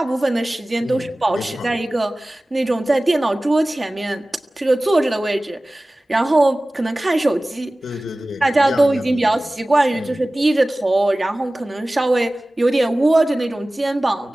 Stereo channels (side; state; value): both; normal; correlation 0.97